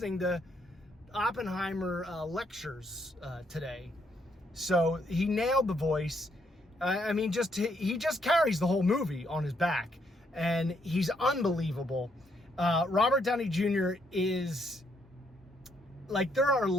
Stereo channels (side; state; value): both; normal; correlation 0.73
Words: to Oppenheimer lectures today. So he nailed the voice. He just carries the whole movie on his back, and he's unbelievable. Robert Downey Jr. is, like, there are